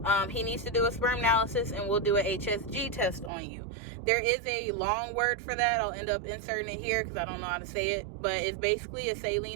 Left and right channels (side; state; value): left; drops out; at 3.3 s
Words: he needs to do a sperm analysis, and we'll do an HSG test on you. There is a long word for that. I'll end up inserting it here because I don't know how to say it. But it's basically a